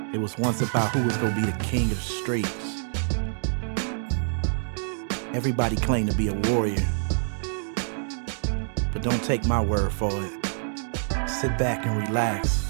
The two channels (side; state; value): left; silent; digital silence